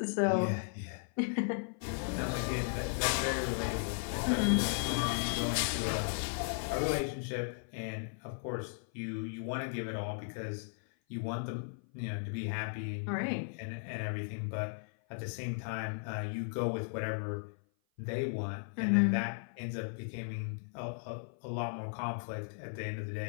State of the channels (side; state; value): right; silent; 54 dB below the other